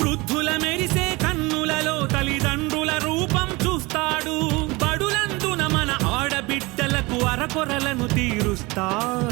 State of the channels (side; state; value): left; quieter; 23.9 dB